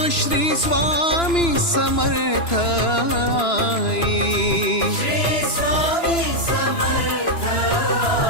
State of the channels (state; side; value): late; right; 2.9 ms